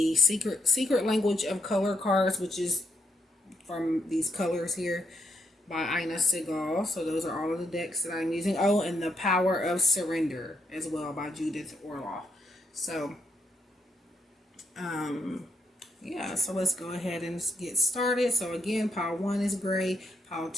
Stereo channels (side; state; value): both; normal; correlation 0.78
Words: Psychicreadings cards, which is from these colors here, by Ina Segal. So those are all of the decks that I'm using. Oh, and the Power of Surrender as well by Judith Orloff. So yeah, so let's go ahead and get started. So again, pile 1 is gray, pile